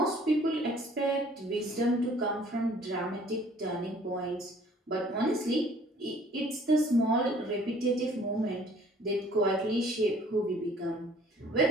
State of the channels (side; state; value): both; normal; correlation 0.56